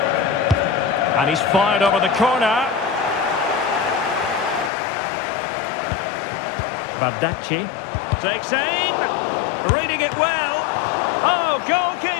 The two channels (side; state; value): right; drops out; at 4.7 s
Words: And he's fired over the corner. Bardacci. Takes aim, reading it well. Oh,